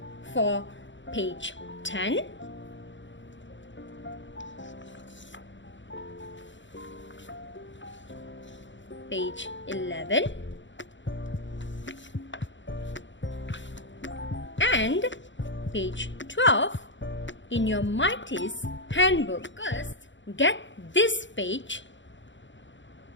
for page 10, page 11, and page 12 in your Mighty's handbook. First, get this page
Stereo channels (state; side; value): late; right; 0.54 ms